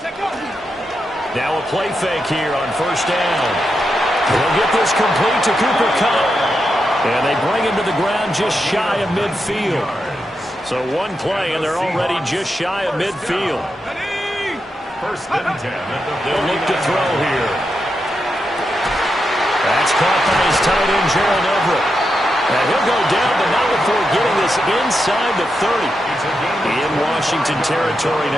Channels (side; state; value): both; normal; correlation 0.86